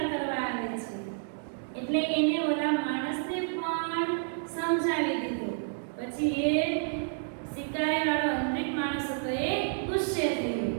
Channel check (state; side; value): silent; left; digital silence